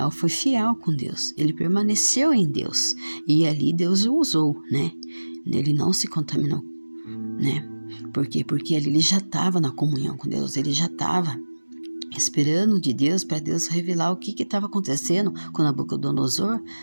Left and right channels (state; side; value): inverted; both; correlation -1.00